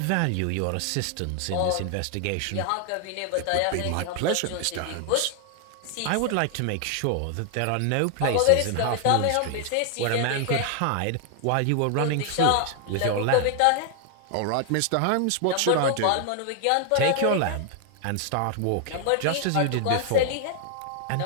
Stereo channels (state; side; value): different; both; correlation 0.00